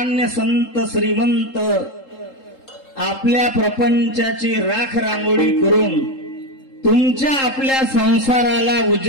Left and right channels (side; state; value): right; late; 3.7 ms